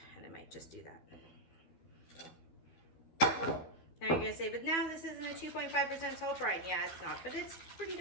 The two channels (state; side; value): late; right; 12 ms